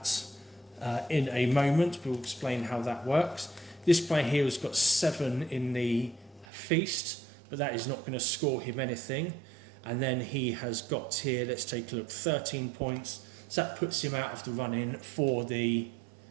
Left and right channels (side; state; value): left; drops out; at 6.5 s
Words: in a moment. We'll explain how that works. This player here has got 7 in the feast, but that is not going to score him anything. And then he has got here, let's take a look, 13 points. So that puts him out of the run-in for the